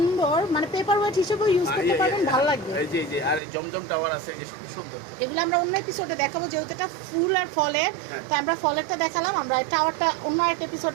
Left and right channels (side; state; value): left; drops out; at 3.4 s